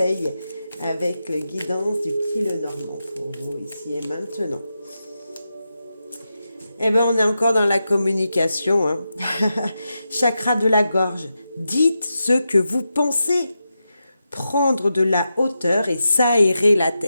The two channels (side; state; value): both; inverted; correlation -0.89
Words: avec le guidance du petit Lenormand pour vous ici et maintenant. Eh bien, on est encore dans la communication. Hein. Chakra de la gorge. Dites ce que vous pensez. Prendre de la hauteur et s'aérer la